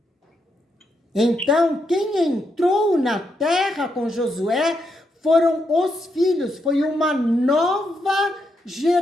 Então, quem entrou na terra com Josué foram os filhos, foi uma nova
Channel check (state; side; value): normal; both; correlation 0.80